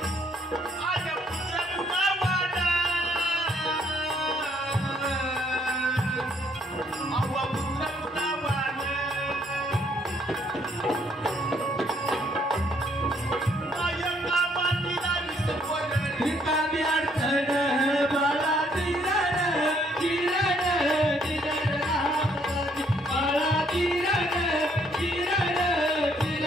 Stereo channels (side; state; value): both; normal; correlation 0.67